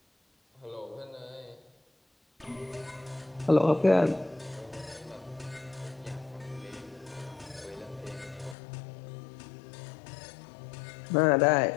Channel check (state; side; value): drops out; right; at 8.6 s